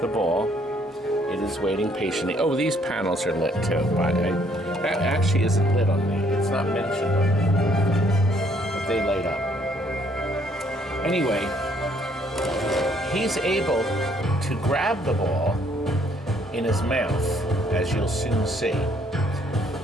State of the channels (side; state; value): both; normal; correlation 0.66